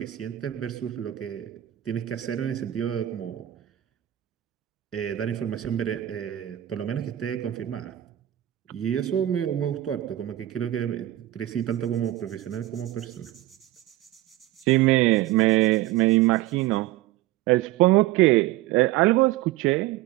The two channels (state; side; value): quieter; left; 14.8 dB